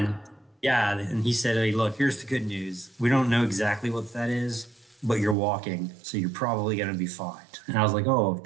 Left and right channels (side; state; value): left; drops out; at 5.4 s